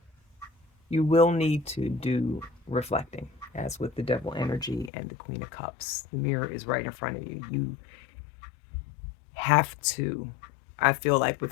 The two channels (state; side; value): drops out; right; at 4.9 s